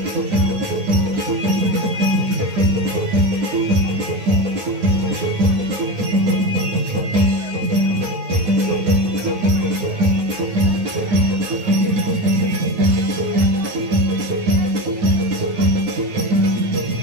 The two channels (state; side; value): late; left; 9.6 ms